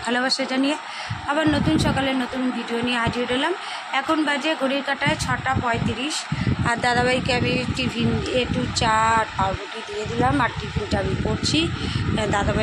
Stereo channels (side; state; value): both; identical; correlation 1.00